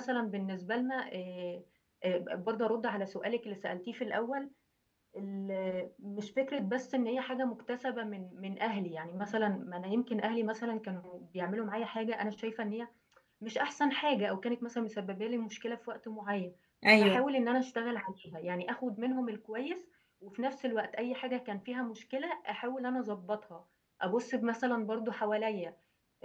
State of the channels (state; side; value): identical; both; correlation 1.00